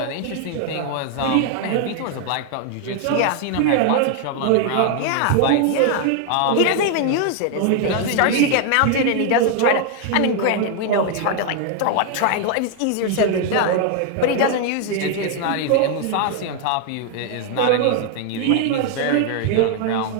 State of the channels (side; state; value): both; different; correlation 0.00